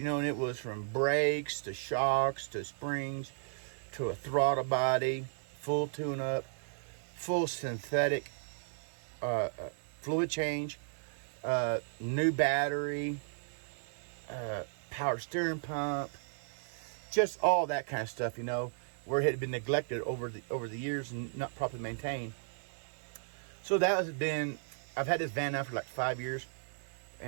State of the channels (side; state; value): left; silent; digital silence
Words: know, and it was from brakes to shocks to springs to a throttle body, full tune-up, full synthetic fluid change, new battery, power steering pump, just all that kind of stuff, you know, where it had been neglected over the years and not properly maintained. So that has been, I've had this van now for like 5 years,